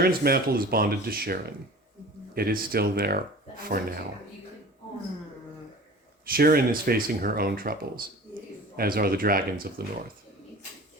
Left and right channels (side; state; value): both; normal; correlation 0.41